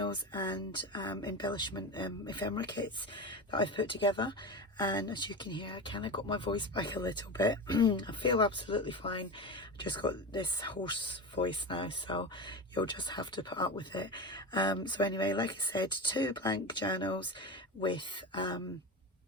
and embellishment ephemera kits that I've put together. And as you can hear, I kind of got my voice back a little bit. I feel absolutely fine. I just got this hoarse voice now, so you'll just have to put up with it. So anyway, like I said, two blank journals with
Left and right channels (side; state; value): both; normal; correlation 0.23